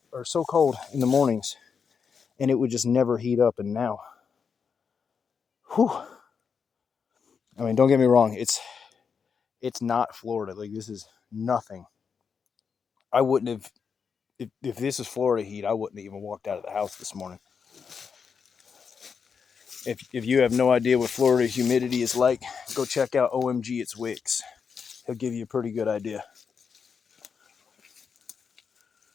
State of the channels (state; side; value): quieter; right; 6.2 dB